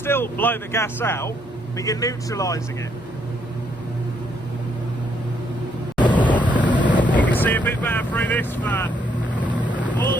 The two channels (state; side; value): normal; both; correlation 0.72